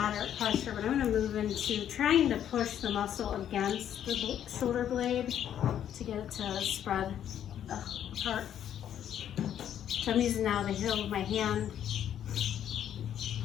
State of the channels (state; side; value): quieter; right; 10.0 dB